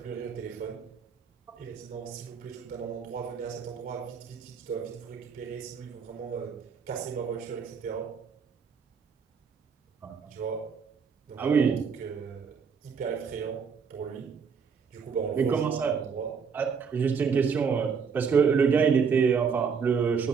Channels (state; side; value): quieter; left; 6.1 dB